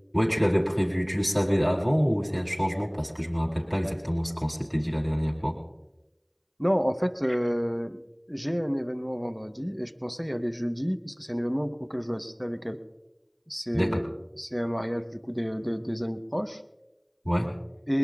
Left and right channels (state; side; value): identical; both; correlation 1.00